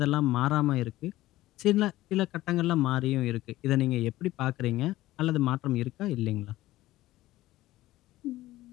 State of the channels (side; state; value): right; quieter; 16.4 dB